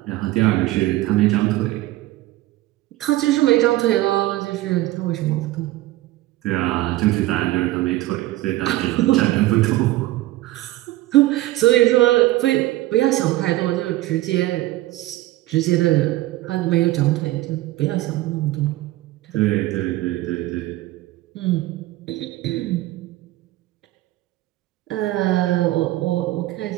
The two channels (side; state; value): left; quieter; 17.0 dB